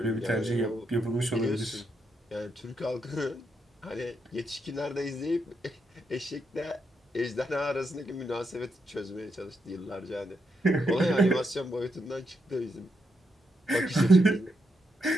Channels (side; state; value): both; normal; correlation 0.81